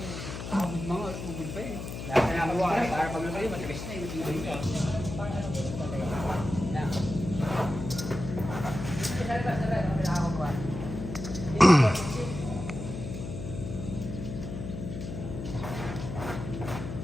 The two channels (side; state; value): left; noise; hum, 7 dB below the sound